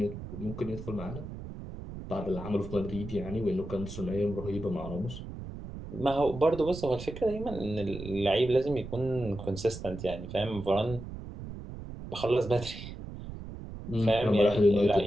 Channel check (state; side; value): noise; right; rumble, 10 dB below the sound